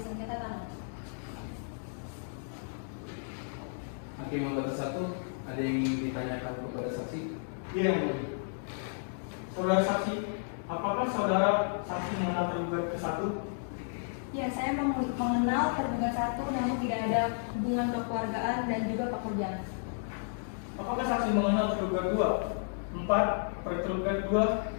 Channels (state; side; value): silent; right; digital silence